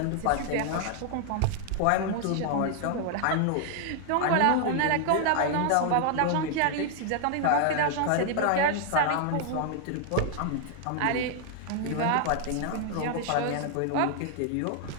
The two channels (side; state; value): both; different; correlation 0.00